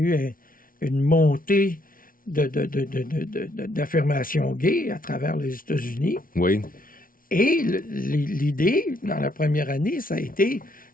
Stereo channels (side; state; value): right; late; 0.41 ms